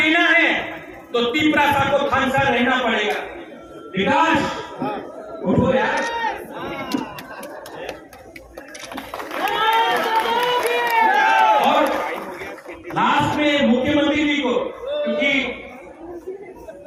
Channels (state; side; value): identical; both; correlation 1.00